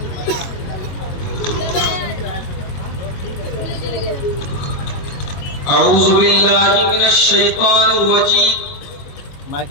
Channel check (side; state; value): right; late; 22 ms